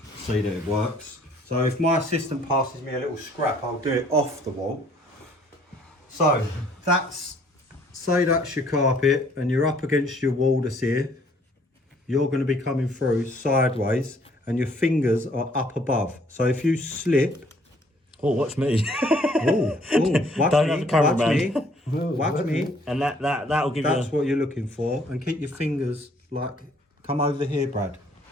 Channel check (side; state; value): both; normal; correlation 0.61